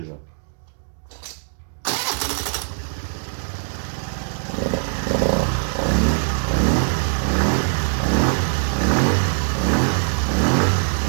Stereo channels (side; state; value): left; silent; 64 dB below the other